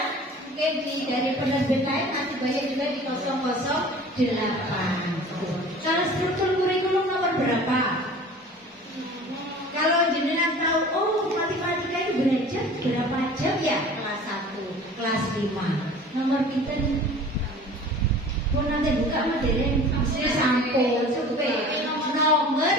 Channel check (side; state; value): both; normal; correlation 0.43